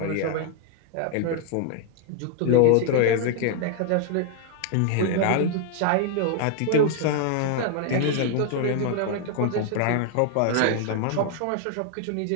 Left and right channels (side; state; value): both; different; correlation 0.00